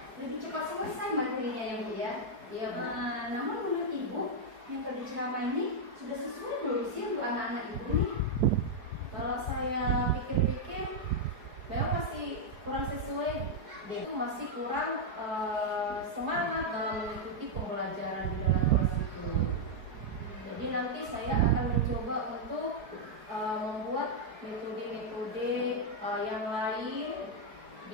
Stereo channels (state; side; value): late; left; 4.6 ms